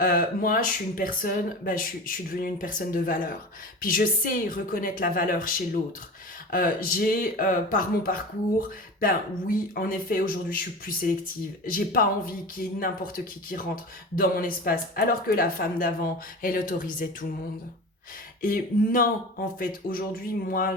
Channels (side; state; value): both; normal; correlation 0.32